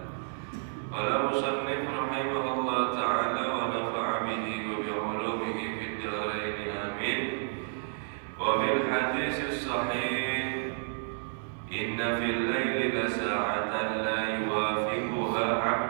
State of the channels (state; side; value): silent; left; digital silence